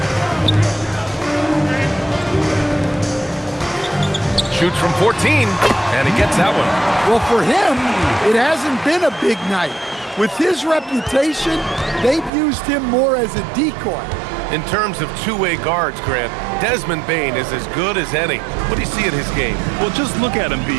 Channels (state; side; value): drops out; left; at 12.3 s